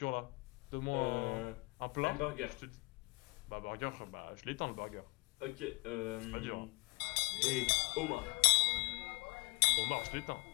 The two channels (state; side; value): quieter; right; 27.0 dB